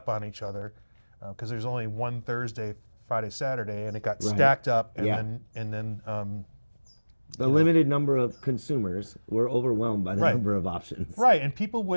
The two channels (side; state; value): both; inverted; correlation -1.00